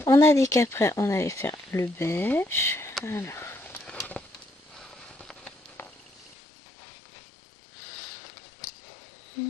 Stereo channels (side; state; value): right; drops out; at 6.4 s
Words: On a dit qu'après, on allait faire le beige. Alors.